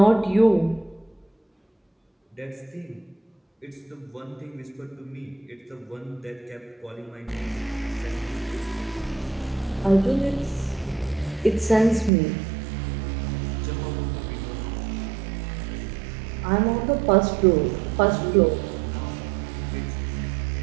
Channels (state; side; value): drops out; left; at 12.1 s